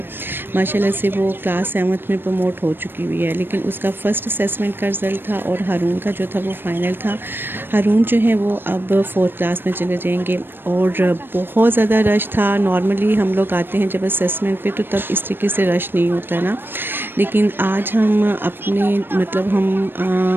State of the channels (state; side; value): late; left; 0.098 ms